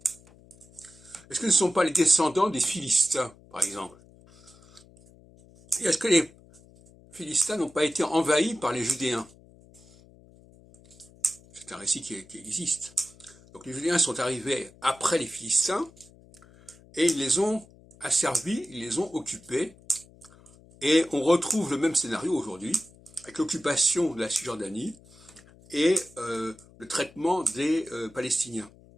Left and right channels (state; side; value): noise; left; hum, 25 dB below the sound